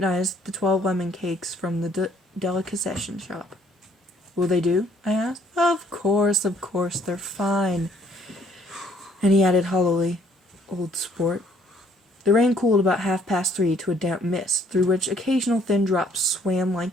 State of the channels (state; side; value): normal; both; correlation 0.63